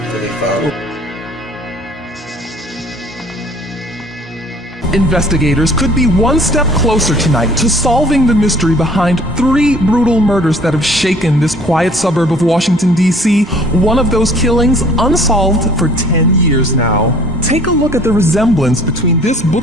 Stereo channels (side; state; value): both; normal; correlation 0.53